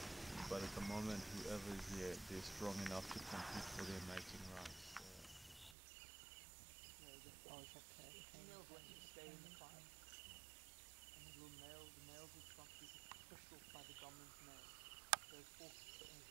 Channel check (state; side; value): drops out; left; at 5.8 s